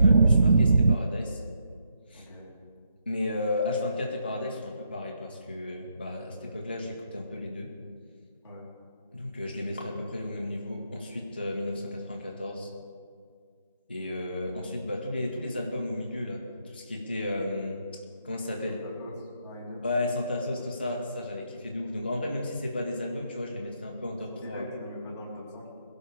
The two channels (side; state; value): both; inverted; correlation -0.78